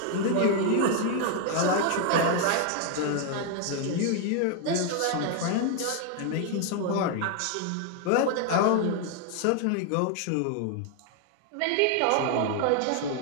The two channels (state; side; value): different; both; correlation 0.00